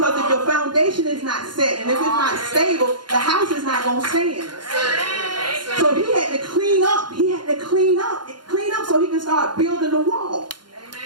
if your foundation is not set and if it's not stable, the house is not going to stand. So he had to clean up. He had to clean up so he can start building the wall.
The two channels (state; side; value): late; left; 0.71 ms